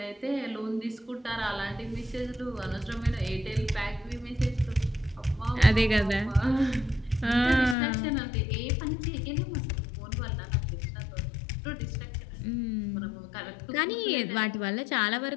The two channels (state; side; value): drops out; right; at 7.8 s